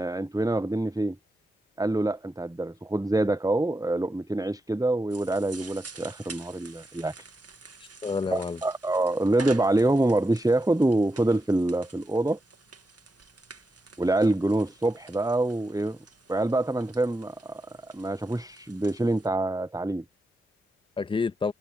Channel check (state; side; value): normal; both; correlation 0.87